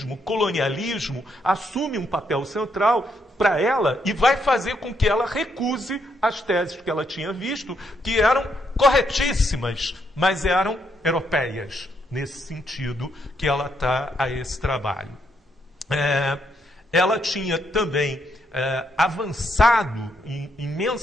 colonialismo, assume um papel central para ela e vai fazer com que ela recuse as teses que ela tinha visto, que eram corretíssimas, mas eram europeias, nesse sentido que ela está a esse trabalho. Ela tinha também avançado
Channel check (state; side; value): normal; both; correlation 0.76